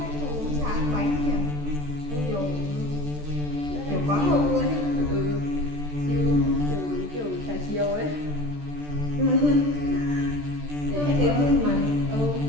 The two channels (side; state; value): left; late; 14 ms